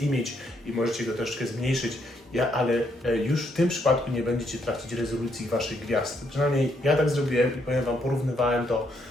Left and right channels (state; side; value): normal; both; correlation 0.74